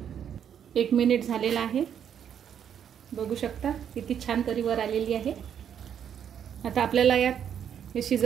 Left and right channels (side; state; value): left; quieter; 8.7 dB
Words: 1 मिनिट झालेला आहे, बघू शकता किती छान तरी वर आलेली आहे। आता आपल्याला यात हे